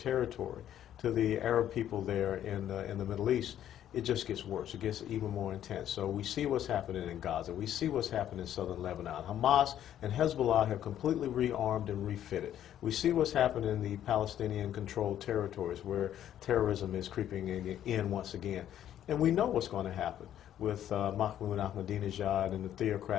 to the Arab people there in the Middle East, it just gets worse. It gets even more intense. So we see what's happening in Gaza. We see what's happening in southern Lebanon. Hamas and Hezbollah have completely rearmed and refitted. We see what's happening in the Palestinian-controlled territories where terrorism is creeping in once again. And we know what's going to happen with Mahmoud Ahmadinejad and the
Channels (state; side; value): quieter; right; 11.0 dB